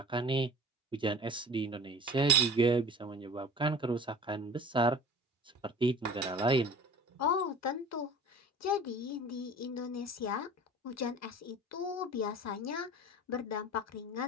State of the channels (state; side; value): normal; both; correlation 0.40